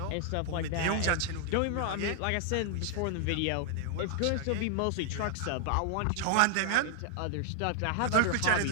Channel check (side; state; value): both; different; correlation 0.00